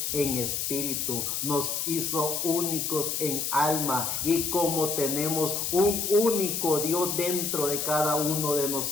en espíritu, nos hizo únicos en alma, y como tenemos un único Dios dentro de cada uno de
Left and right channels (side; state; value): left; noise; hiss, 1 dB below the sound